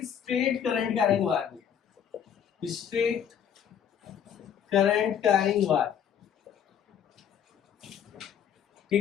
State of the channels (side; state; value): right; quieter; 8.6 dB